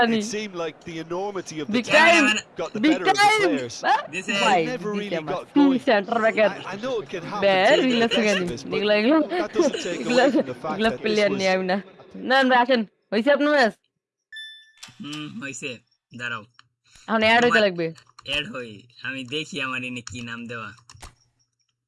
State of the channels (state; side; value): identical; both; correlation 1.00